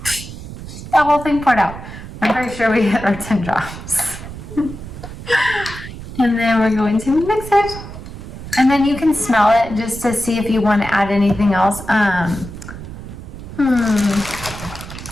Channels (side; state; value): right; noise; rumble, 12 dB below the sound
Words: that whole thing poured out. I'm pretty sure we hit our 10 drops. And then we're going to mix it. And then you can smell it just to see if you want to add anything else.